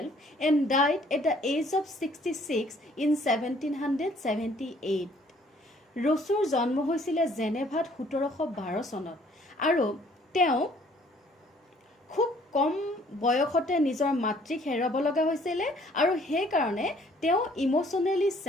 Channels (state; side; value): normal; both; correlation 0.60